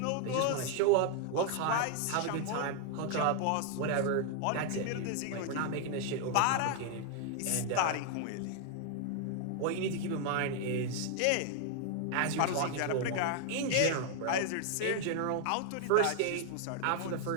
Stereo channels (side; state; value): both; different; correlation 0.00